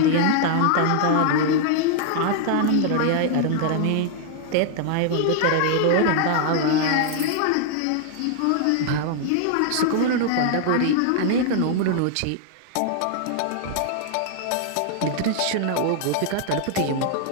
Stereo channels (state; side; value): different; both; correlation 0.00